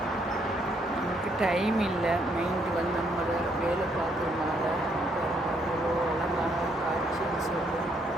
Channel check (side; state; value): both; normal; correlation 0.71